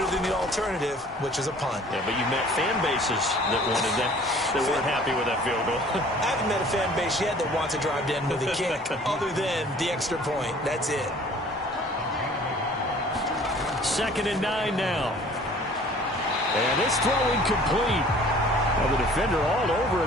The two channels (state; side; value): normal; both; correlation 0.51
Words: than the alternative, which is a punt. Yeah, but you met fan bases that wanted that, that weren't happy with that field goal. I haven't met a fan base yet that wants to drive to end with a kick, other than the extra point. That's it. 2nd and 9 now. And this throw incomplete. Well, the defender all over